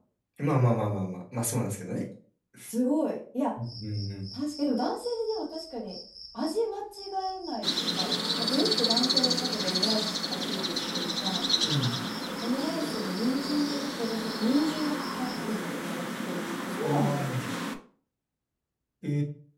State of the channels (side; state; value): both; identical; correlation 1.00